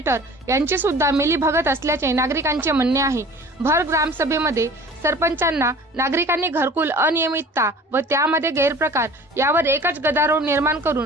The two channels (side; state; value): both; normal; correlation 0.44